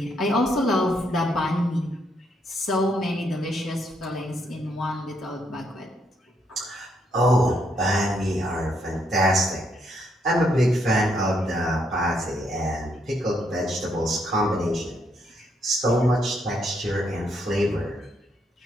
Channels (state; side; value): normal; both; correlation 0.75